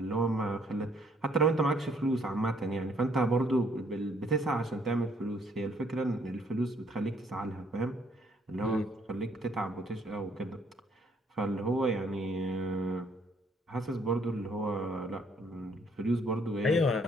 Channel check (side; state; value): both; normal; correlation 0.65